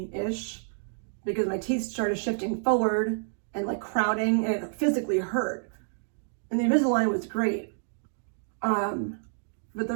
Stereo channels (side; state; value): left; silent; digital silence